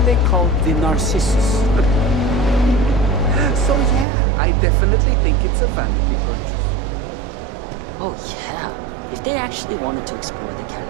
called the Narcissus. So yeah, I definitely think it's a vanity Oh, yeah. If they actually wanted to explore the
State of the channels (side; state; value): left; drops out; at 4.0 s